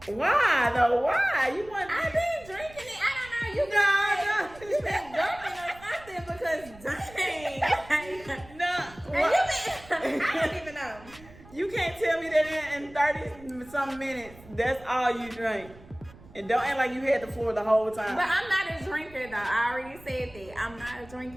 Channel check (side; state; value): right; noise; rumble, 21 dB below the sound